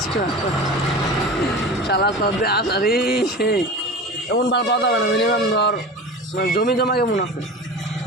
মাল। শালা তোর আসারি সেই এমন মাল পাওয়া যাবে না। মিনিমাম ধর মানে জমি জমা কেমন আছে?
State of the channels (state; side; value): normal; both; correlation 0.33